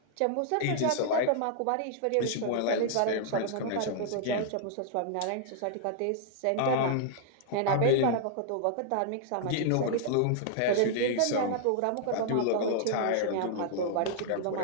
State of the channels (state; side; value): different; both; correlation 0.00